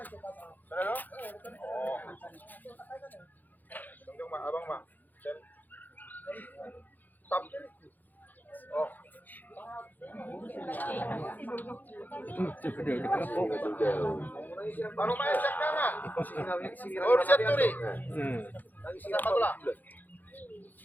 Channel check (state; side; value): late; right; 0.084 ms